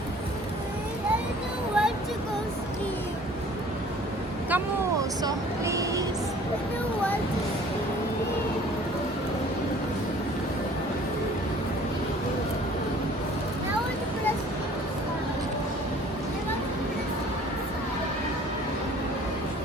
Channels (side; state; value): both; normal; correlation 0.51